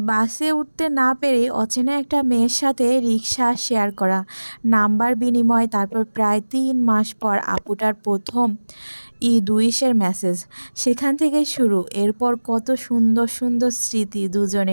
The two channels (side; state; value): both; inverted; correlation -1.00